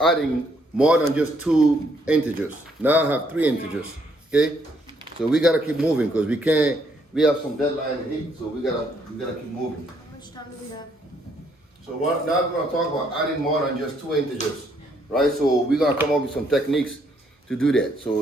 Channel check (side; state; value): both; normal; correlation 0.70